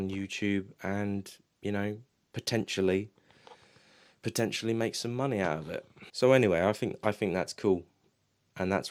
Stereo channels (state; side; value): identical; both; correlation 1.00